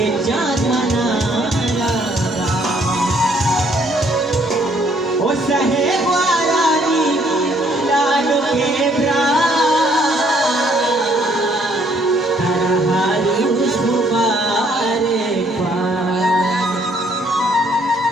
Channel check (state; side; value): normal; both; correlation 0.65